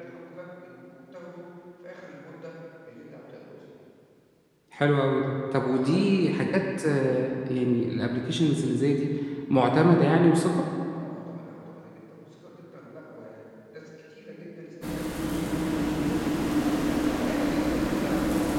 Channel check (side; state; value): both; identical; correlation 1.00